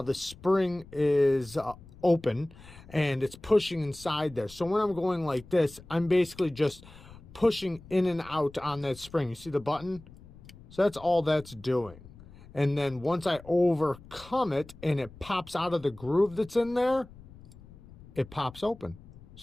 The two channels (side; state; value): left; noise; rumble, 20 dB below the sound